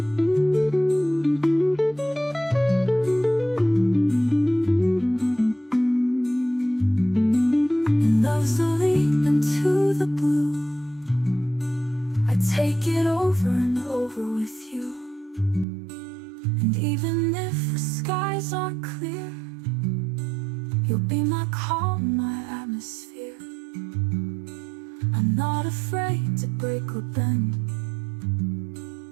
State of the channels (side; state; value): left; drops out; at 15.7 s